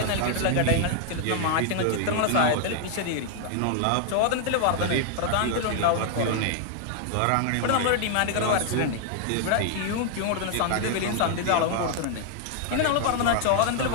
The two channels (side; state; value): both; different; correlation 0.00